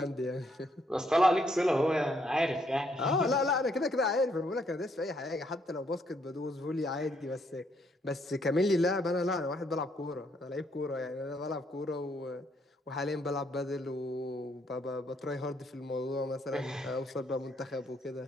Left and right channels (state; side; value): normal; both; correlation 0.72